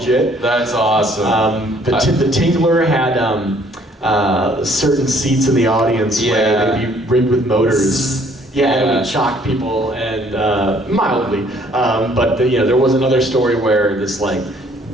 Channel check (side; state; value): both; normal; correlation 0.61